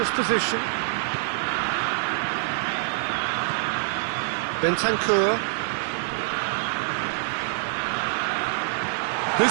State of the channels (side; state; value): left; silent; digital silence